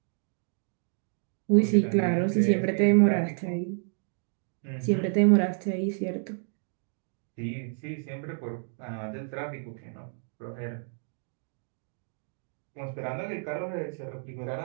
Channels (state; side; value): silent; left; digital silence